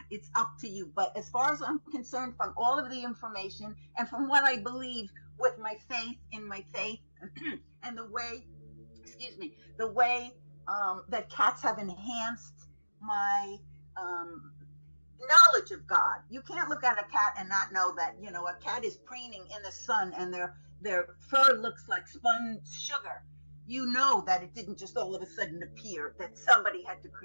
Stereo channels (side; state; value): both; inverted; correlation -1.00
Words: it's up to you. But as far as I'm concerned, from all of the information and from what I believe with my faith, in my faith and the way that cats have enhanced my knowledge of God. You can't look at a cat and not know that, a cat is preening in the sun and their fur looks like spun sugar. You know that it didn't just all of a sudden appear, that somebody had to